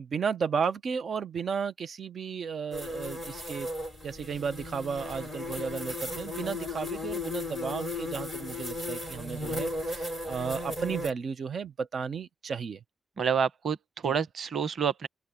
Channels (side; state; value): left; quieter; 4.0 dB